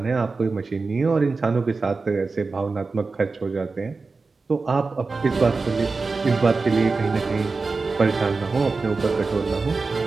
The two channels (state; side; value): quieter; left; 4.1 dB